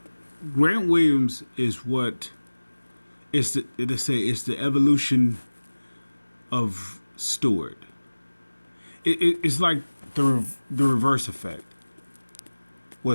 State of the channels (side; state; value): both; inverted; correlation -1.00